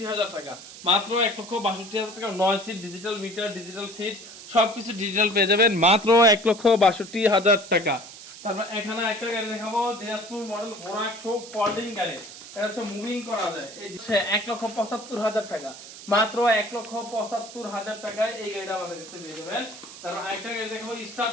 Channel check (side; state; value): right; noise; hiss, 15 dB below the sound